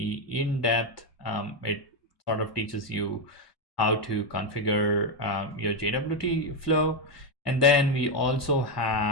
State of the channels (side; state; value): right; late; 1.1 ms